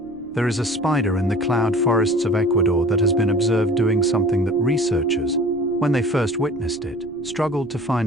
There is a spider in the cloud forests of Ecuador that has been observed doing something that researchers, when they first witnessed it, struggled to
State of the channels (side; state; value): left; noise; rumble, 25 dB below the sound